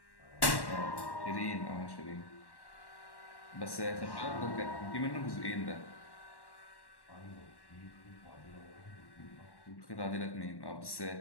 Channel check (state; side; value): late; right; 1.1 ms